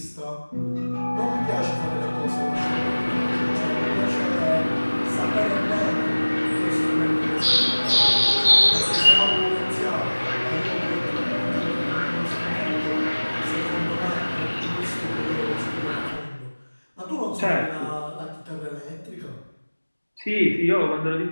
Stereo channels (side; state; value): both; inverted; correlation -1.00